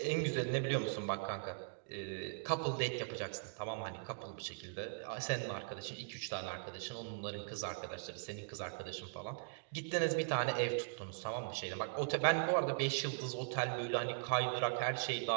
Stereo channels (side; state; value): left; silent; digital silence